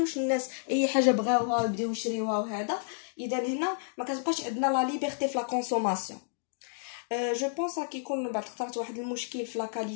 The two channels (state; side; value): silent; right; digital silence